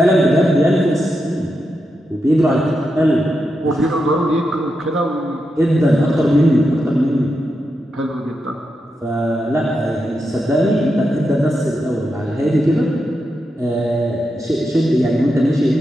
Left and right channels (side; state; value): both; normal; correlation 0.86